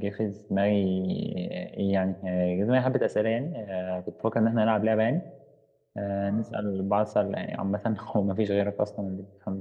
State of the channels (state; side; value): identical; both; correlation 1.00